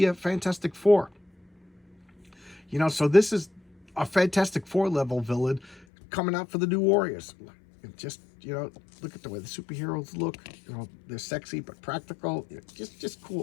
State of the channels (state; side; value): drops out; right; at 5.9 s